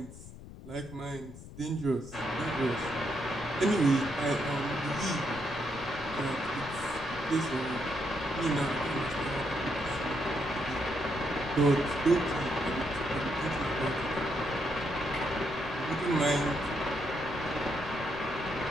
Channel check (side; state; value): left; noise; rumble, 15 dB below the sound